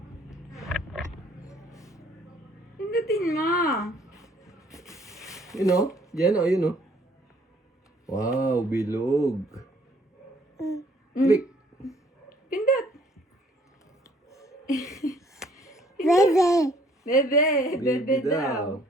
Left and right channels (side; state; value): both; normal; correlation 0.60